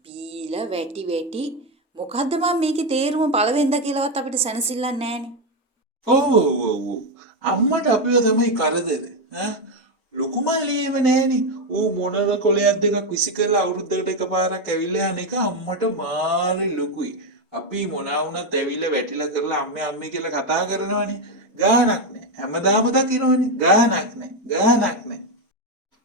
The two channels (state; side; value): normal; both; correlation 0.08